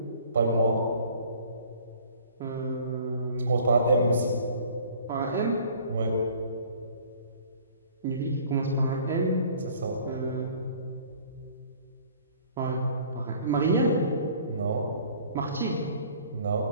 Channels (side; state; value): both; inverted; correlation -0.51